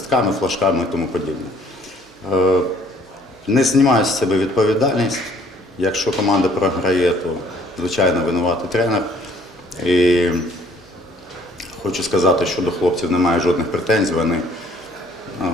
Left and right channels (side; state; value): both; normal; correlation 0.59